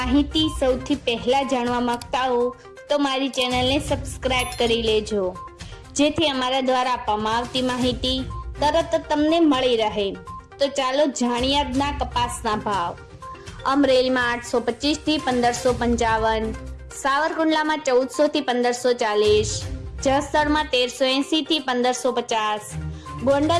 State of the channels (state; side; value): identical; both; correlation 1.00